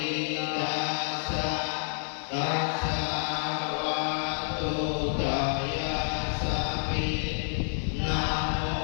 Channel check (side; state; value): right; silent; digital silence